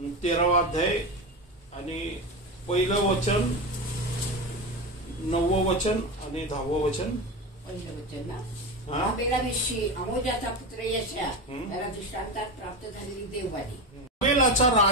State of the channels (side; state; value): both; normal; correlation 0.20